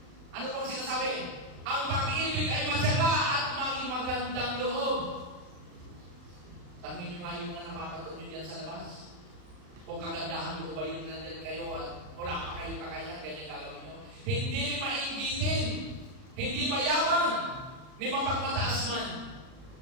Ano pong sinasabi? Ang pag-ibig ay matyaga at maging magandang loob. Tangin nyo nga yung mga napapanood nyo dyan sa labas. Kung kagandahan mo ba yung nandyan kayo, wala pa kayong kakayahan, ganyan gagawin nyo. Hindi mainggitin, hindi mayabang, ni mapagmataas man.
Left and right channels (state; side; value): late; left; 39 ms